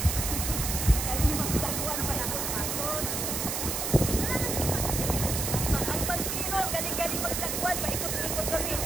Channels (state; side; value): noise; right; hiss, 1 dB below the sound